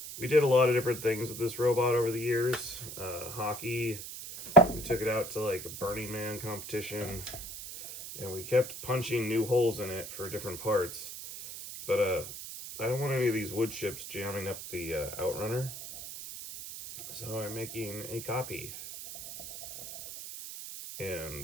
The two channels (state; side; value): noise; right; hiss, 10 dB below the sound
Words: We did a lot of different things with this robot over the years. Hockey, we took it out to like a Burning Man competition, and we kept punching new holes in it for different parts. But I don't want any of these wood chips jamming up the outrunner, so I'm making a copy.